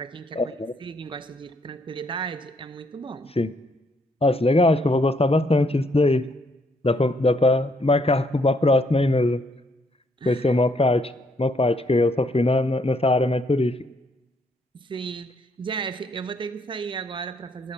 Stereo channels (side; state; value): both; normal; correlation 0.70